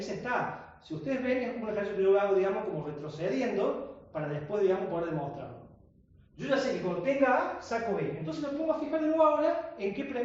está A. Si ustedes ven, es un ejercicio que yo hago, digamos, como retrocediendo, para después, digamos, poder demostrarlo. Yo ya sé que cuando tenga A, saco B. Entonces me pongo a fijar de nuevo ahora en qué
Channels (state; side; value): identical; both; correlation 1.00